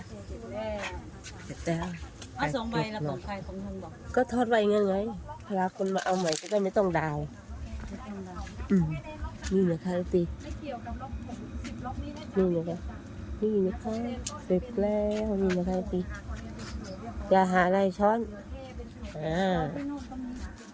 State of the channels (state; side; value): identical; both; correlation 1.00